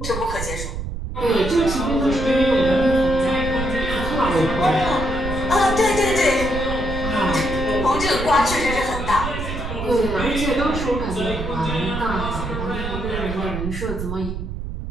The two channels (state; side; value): noise; right; rumble, 6 dB below the sound